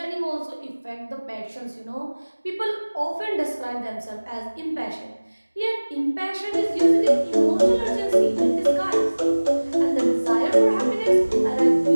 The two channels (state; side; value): inverted; both; correlation -1.00